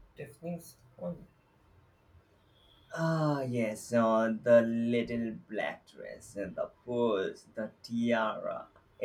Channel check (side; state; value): both; identical; correlation 1.00